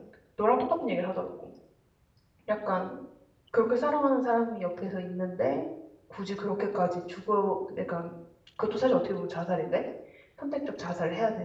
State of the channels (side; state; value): both; identical; correlation 1.00